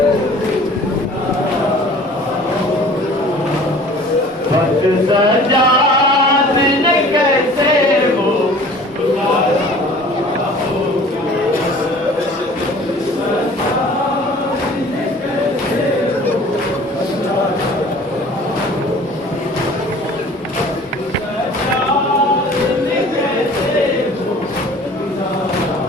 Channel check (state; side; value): normal; both; correlation 0.47